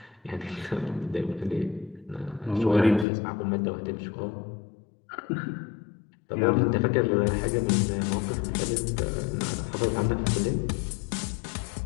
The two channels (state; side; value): drops out; right; at 3.1 s